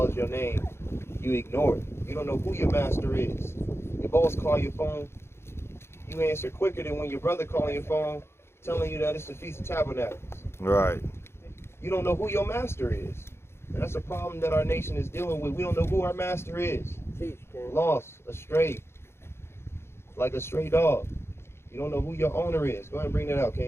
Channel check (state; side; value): late; right; 0.12 ms